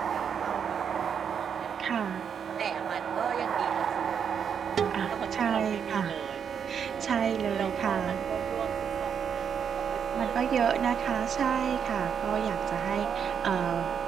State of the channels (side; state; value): left; quieter; 7.5 dB